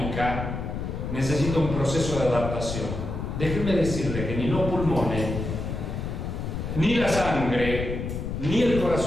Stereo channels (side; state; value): left; noise; rumble, 4 dB below the sound